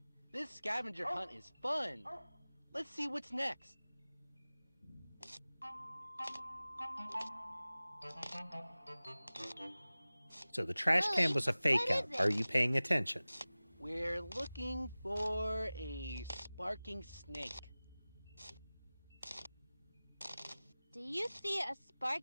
This scavenger hunt is fun. Let's see what's next. So the trash can was a fake out. Are you paying attention? We're looking for a sparking snake. Do you see a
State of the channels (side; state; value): both; inverted; correlation -0.98